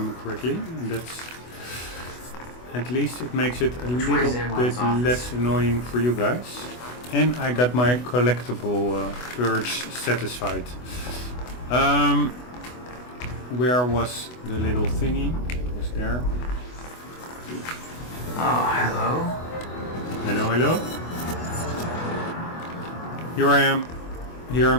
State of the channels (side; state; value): right; late; 24 ms